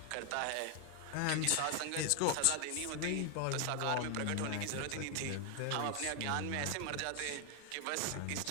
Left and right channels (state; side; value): different; both; correlation 0.00